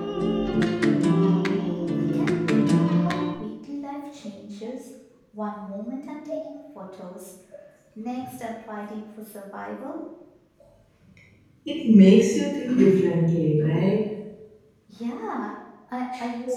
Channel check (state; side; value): identical; both; correlation 1.00